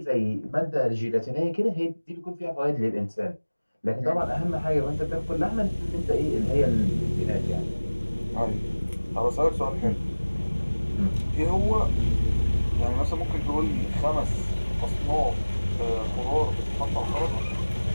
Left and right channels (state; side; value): inverted; both; correlation -1.00